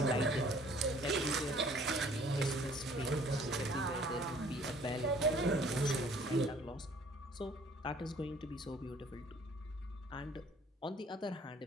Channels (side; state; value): both; normal; correlation 0.56